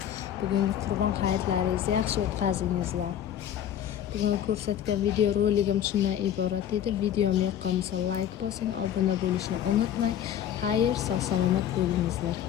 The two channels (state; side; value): quieter; right; 10.3 dB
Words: Bugungi qurbon hayitlaringizni yaxshi o'tkazingizlar. Bugun ko'rsatgan video roligim shundan iborat edi. Videom yoqqan bo'lsa like bosing, obuna bo'lishni unutmang. Xayr, sog' salomat bo'lingizlar.